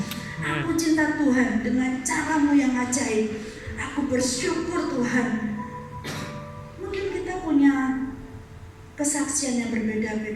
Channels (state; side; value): identical; both; correlation 1.00